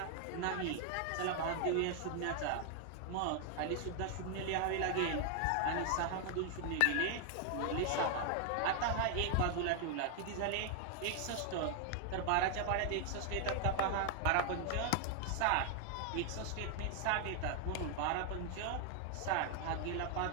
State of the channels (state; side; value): different; both; correlation 0.00